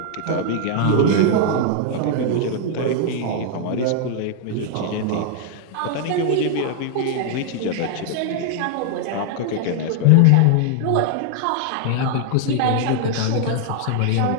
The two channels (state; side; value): different; both; correlation 0.00